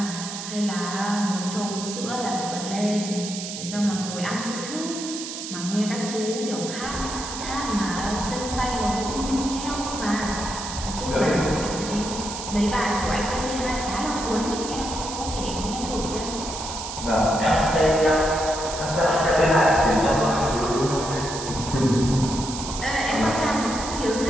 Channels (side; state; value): right; noise; hiss, 8 dB below the sound